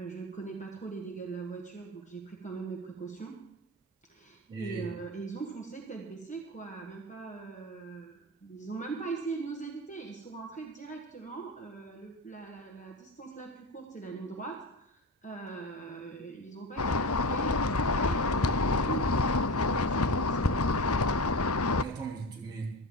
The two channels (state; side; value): normal; both; correlation 0.25